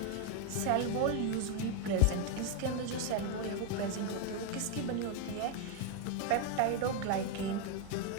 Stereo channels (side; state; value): both; different; correlation 0.01